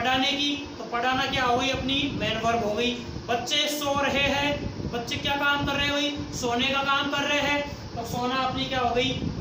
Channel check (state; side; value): identical; both; correlation 1.00